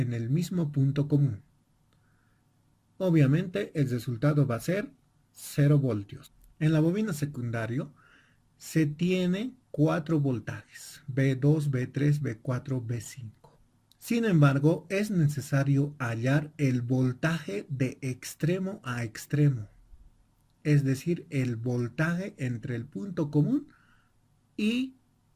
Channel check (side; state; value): both; identical; correlation 1.00